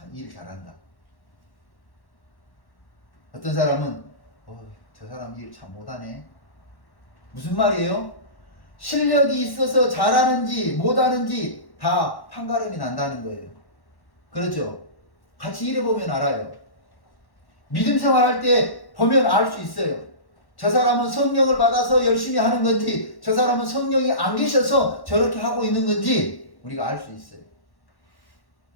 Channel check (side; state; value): right; late; 1.1 ms